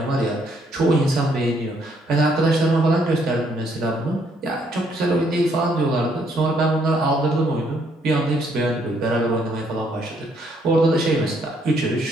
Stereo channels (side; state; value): both; normal; correlation 0.69